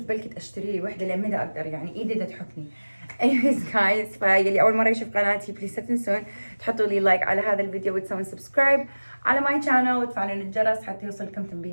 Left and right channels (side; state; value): both; inverted; correlation -1.00